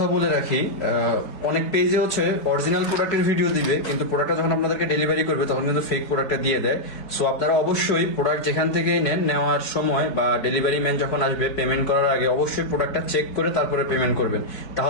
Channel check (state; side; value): late; right; 4.6 ms